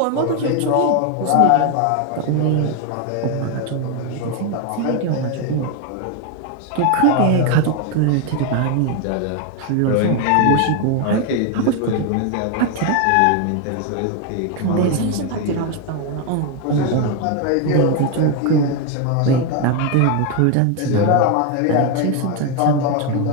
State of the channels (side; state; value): both; different; correlation 0.01